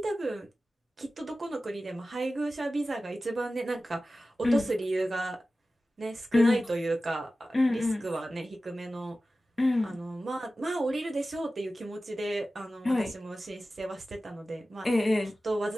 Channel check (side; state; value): both; normal; correlation 0.95